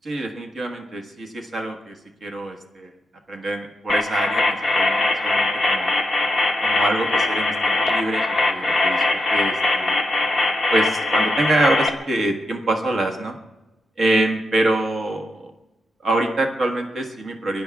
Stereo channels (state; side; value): normal; both; correlation 0.84